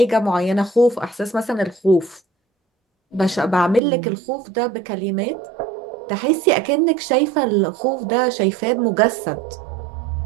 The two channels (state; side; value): drops out; left; at 3.8 s